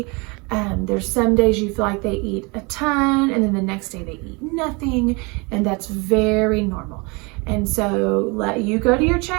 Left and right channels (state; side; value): quieter; left; 28.7 dB